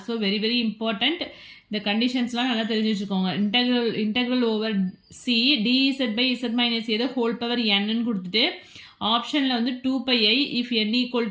So very very important. இந்த கண்டிஷன்ஸ்லாம் நல்லா தெரிஞ்சு வச்சுக்கோங்க. Integral over C dz by z minus A the whole power n கொடுத்துட்டு ஆப்ஷனில் வந்து 2 pi I if n equal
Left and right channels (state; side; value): identical; both; correlation 1.00